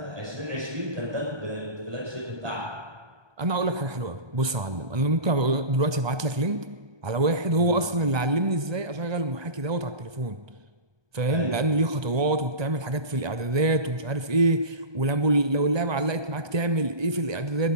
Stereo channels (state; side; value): late; left; 1.2 ms